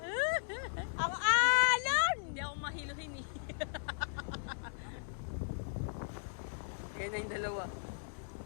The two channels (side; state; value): right; silent; digital silence